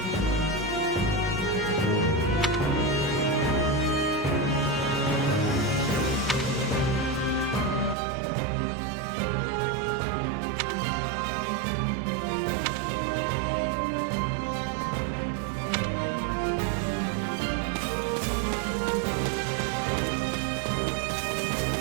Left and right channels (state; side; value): drops out; left; at 8.0 s